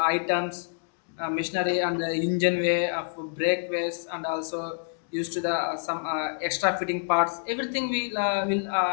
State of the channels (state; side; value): silent; right; digital silence